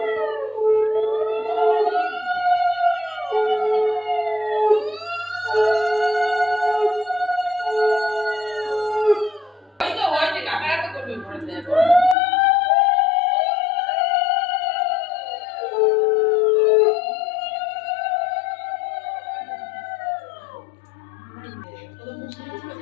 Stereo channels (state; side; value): drops out; right; at 12.2 s